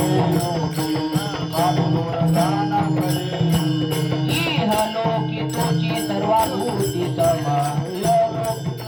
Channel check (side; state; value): both; identical; correlation 1.00